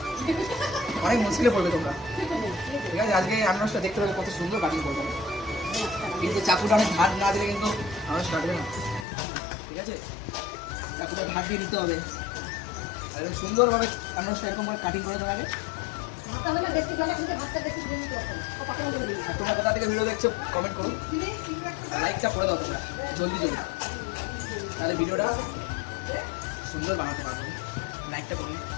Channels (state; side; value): drops out; right; at 9.1 s